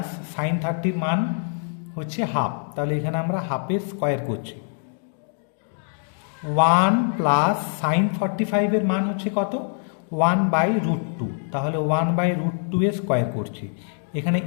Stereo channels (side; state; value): right; silent; 61 dB below the other